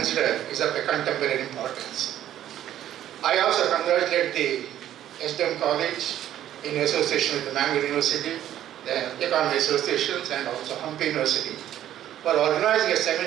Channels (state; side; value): quieter; left; 11.8 dB